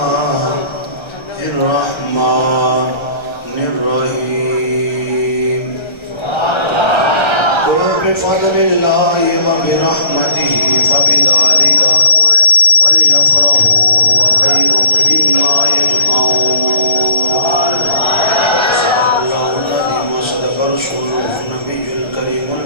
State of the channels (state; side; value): late; right; 1.3 ms